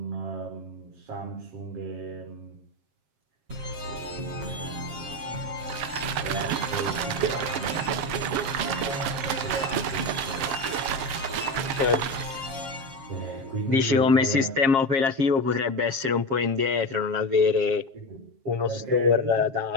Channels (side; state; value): left; late; 7.4 ms